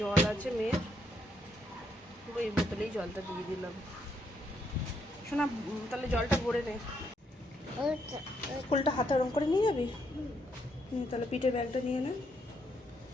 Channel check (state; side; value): normal; both; correlation 0.75